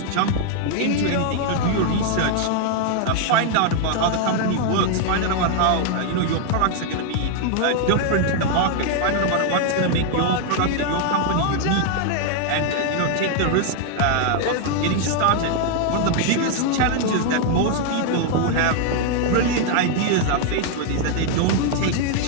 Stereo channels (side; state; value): both; different; correlation 0.00